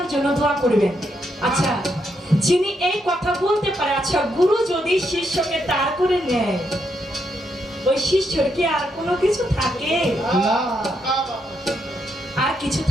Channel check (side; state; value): both; normal; correlation 0.79